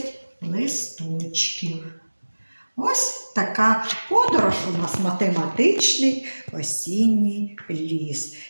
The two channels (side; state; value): both; inverted; correlation -1.00